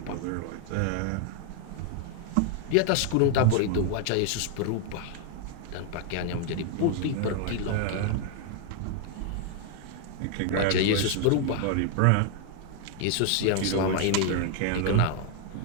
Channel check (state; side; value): different; both; correlation 0.00